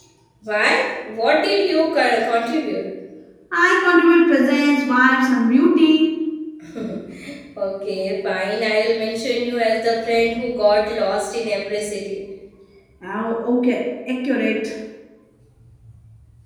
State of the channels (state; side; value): identical; both; correlation 1.00